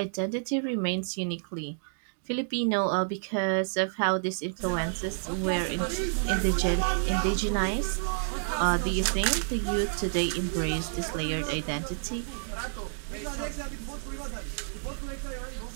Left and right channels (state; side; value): silent; left; digital silence